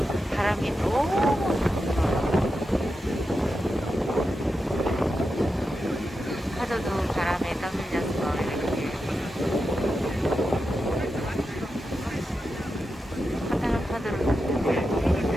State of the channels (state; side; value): normal; both; correlation 0.89